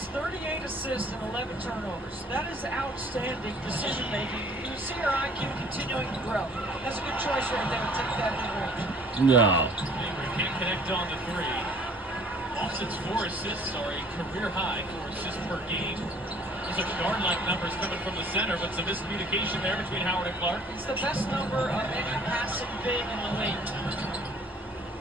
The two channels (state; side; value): normal; both; correlation 0.54